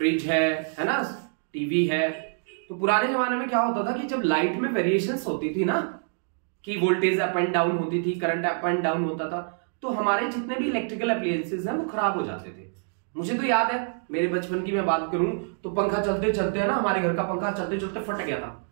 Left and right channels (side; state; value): left; silent; 61 dB below the other